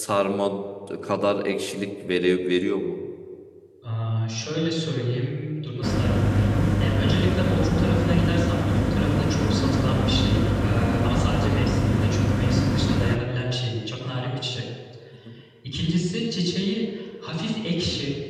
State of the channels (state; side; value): identical; both; correlation 1.00